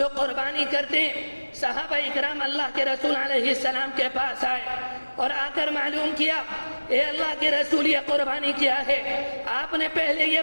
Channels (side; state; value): both; inverted; correlation -1.00